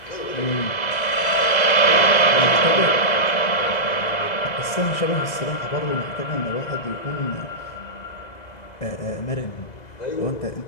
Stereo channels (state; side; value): late; right; 2.0 ms